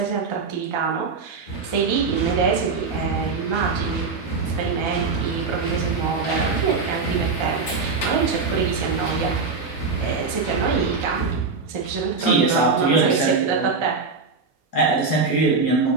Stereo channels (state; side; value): quieter; left; 4.5 dB